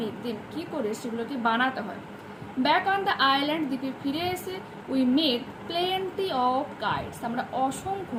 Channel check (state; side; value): identical; both; correlation 1.00